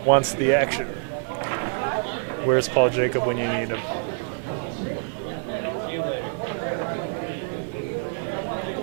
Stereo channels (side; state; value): left; silent; digital silence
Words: wants the action. Where's Paul Jacob when you need him?